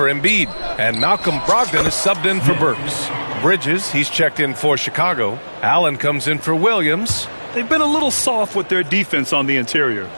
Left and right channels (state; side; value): inverted; both; correlation -1.00